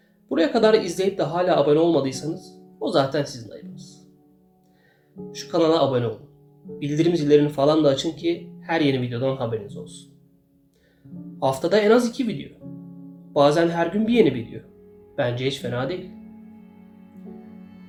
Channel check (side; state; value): both; identical; correlation 1.00